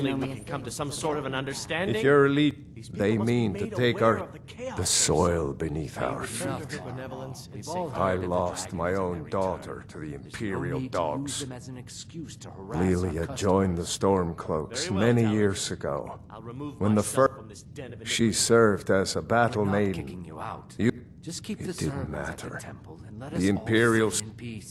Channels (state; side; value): identical; both; correlation 1.00